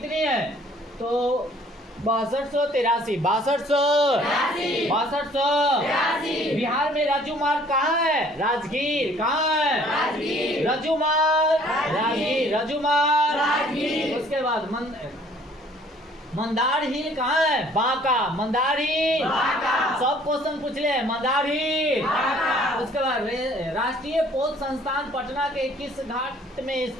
है? तो 6283। बिहार में राजू मार्ग कहाँ है? राजगीर। कहाँ है? राजू मार्ग। उसके बाद मंदार हिल कहाँ है? बांका। मंदार हिल। सब क्वेश्चन पूछ ले। मंदार हिल। उसके बाद राष्ट्रीय पोत संस्थान पटना के किस घाट में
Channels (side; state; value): both; normal; correlation 0.57